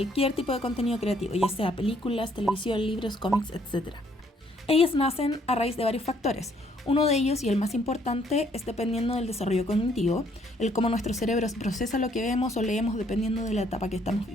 tipo de contenido creativo, ya sea películas, televisión, libros, cómics, etc. Ellas nacen a raíz de varios factores. Uno de ellos, y el más importante, es dependiendo del desarrollo cognitivo, el cómo nuestro cerebro procesa lo que vemos o leemos dependiendo de la etapa que estamos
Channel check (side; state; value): both; normal; correlation 0.66